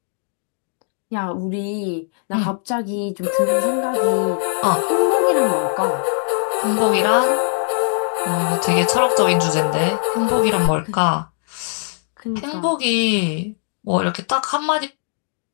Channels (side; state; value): right; silent; digital silence